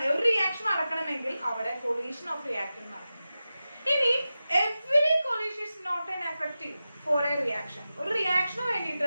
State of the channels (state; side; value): inverted; both; correlation -0.94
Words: ഒരു റിയാക്ഷൻ നടക്കണമെങ്കിൽ അവിടെ കൊളീഷൻ ഓഫ് റിയാക്ടന്റ് നടക്കണം. ഇനി every collision is not an effective for a reaction. ഒരു റിയാക്ഷന്